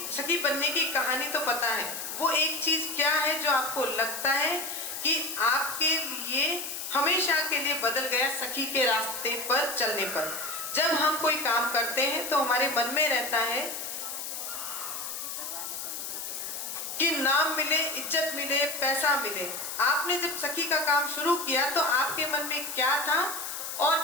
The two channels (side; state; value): left; noise; hiss, 6 dB below the sound